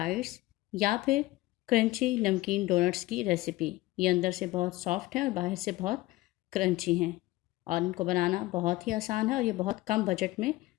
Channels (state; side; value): quieter; right; 18.6 dB